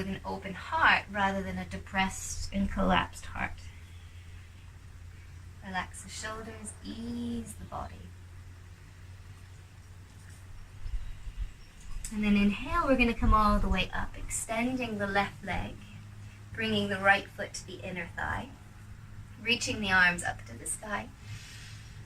an open heart rather than a depressed and collapsed heart. Relax the shoulders, ease the body. And then inhale, we're going to come all the way up, extending the left leg, bringing the right foot to the inner thigh, reaching the arms up to the sky,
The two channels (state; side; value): identical; both; correlation 1.00